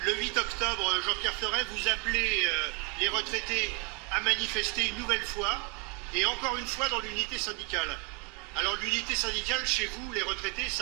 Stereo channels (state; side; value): quieter; left; 30.2 dB